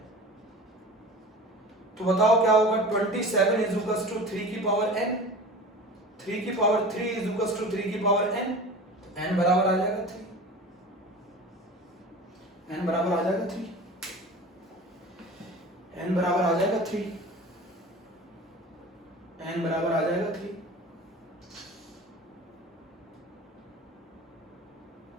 तो बताओ क्या होगा? 27 इज इक्वल्स टू 3 की पावर n, 3 की पावर 3 इज इक्वल्स टू 3 की पावर n, तो n बराबर आ जाएगा 3, n बराबर आ जाएगा 3, n बराबर आ जाएगा 3, n बराबर आ जाएगा 3,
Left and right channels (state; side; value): normal; both; correlation 0.37